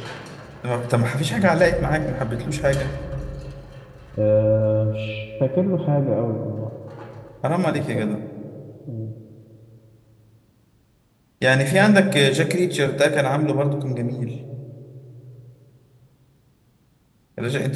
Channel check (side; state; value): both; identical; correlation 1.00